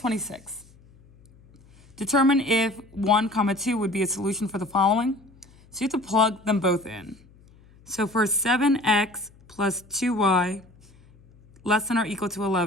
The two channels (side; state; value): left; noise; hum, 27 dB below the sound